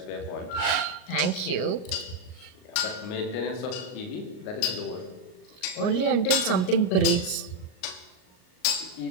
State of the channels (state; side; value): late; right; 38 ms